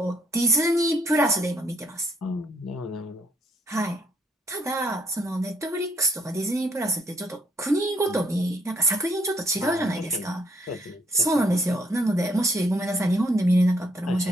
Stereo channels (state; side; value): normal; both; correlation 0.70